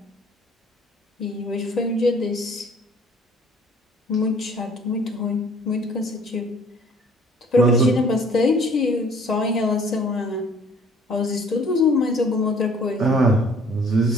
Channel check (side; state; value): both; normal; correlation 0.55